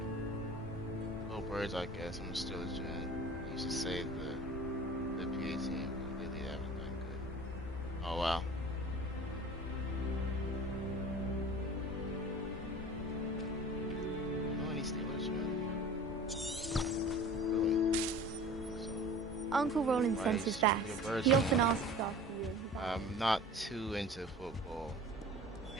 Go birds, I guess. I'm still a gen. I used to say the PA team, but lately they haven't done good. Oh wow. No any Steelers, man. Really? So, Uncle Roland sends his best. your birds He are- often asks after you. I'm not too into football.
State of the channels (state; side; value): normal; both; correlation 0.41